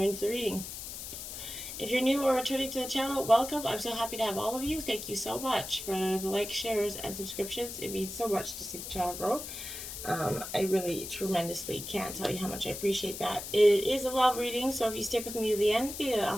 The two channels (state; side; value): noise; left; hiss, 8 dB below the sound